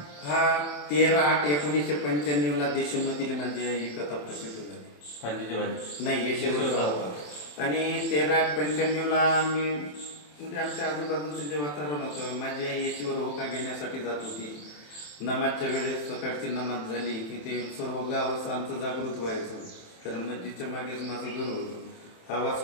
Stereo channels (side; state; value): right; late; 27 ms